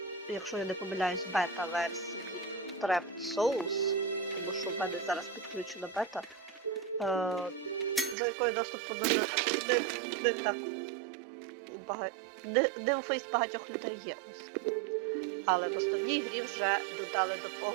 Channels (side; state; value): left; drops out; at 8.2 s